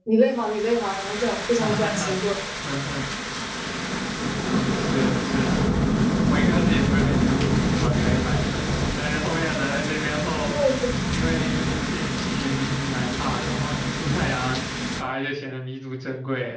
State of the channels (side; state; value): both; identical; correlation 1.00